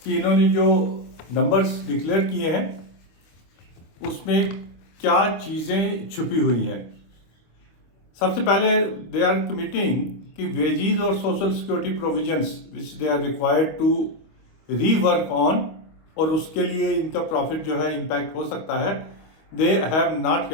कि इन्होंने जो नंबर्स डिक्लेयर किए हैं उसमें क्या चीज़ें छुपी हुई हैं। सबसे पहले दे आर कमिटिंग कि वेजीज और social security provisions which they are required to rework on और उसके लिए इनका प्रॉफिट जो है इम्पैक्ट हो सकता है। They have not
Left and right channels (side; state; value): right; late; 25 ms